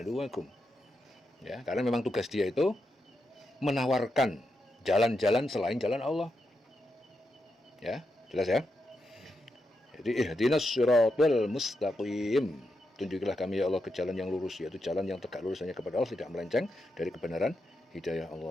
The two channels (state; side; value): normal; both; correlation 0.85